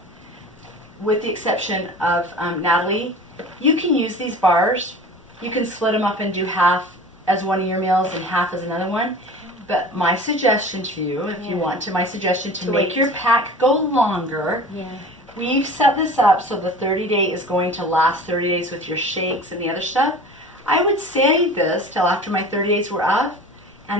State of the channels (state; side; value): normal; both; correlation 0.39